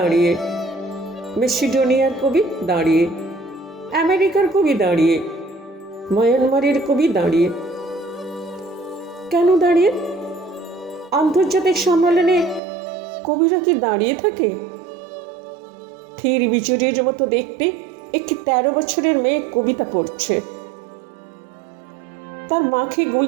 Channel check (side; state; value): left; drops out; at 12.6 s